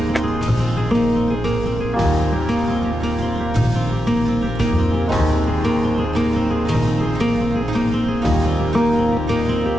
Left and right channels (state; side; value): noise; right; rumble, 11 dB below the sound